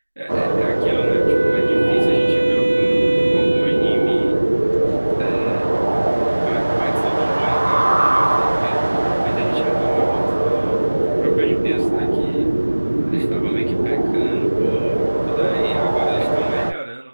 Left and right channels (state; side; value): inverted; both; correlation -1.00